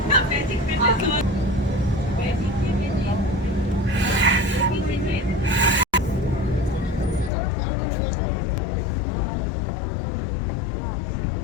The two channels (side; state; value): right; drops out; at 7.3 s